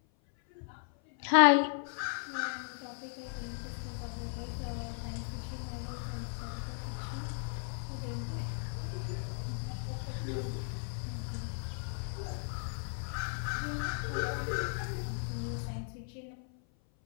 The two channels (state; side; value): silent; right; 54 dB below the other